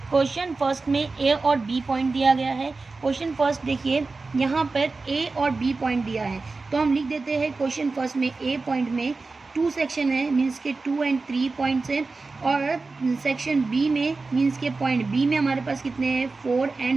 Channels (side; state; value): left; quieter; 3.8 dB